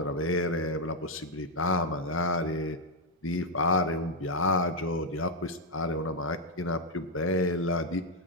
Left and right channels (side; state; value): both; normal; correlation -0.01